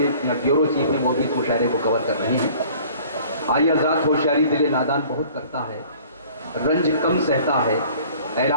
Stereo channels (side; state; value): both; inverted; correlation -0.51